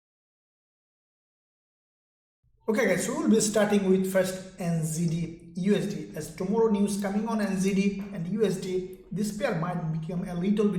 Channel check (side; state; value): both; identical; correlation 1.00